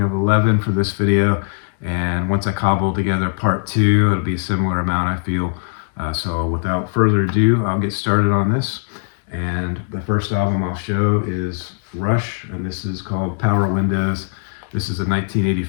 of 11 for this video. And once I cobble together part 2, it'll be a similar amount, I feel. So without further ado, I'll get started on this. And the first album I'll show is Rush, and this is called Power Windows. This is a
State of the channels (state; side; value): silent; right; digital silence